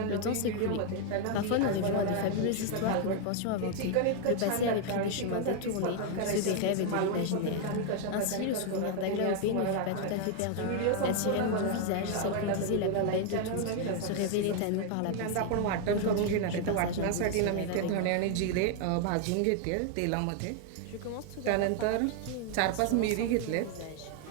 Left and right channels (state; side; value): different; both; correlation 0.00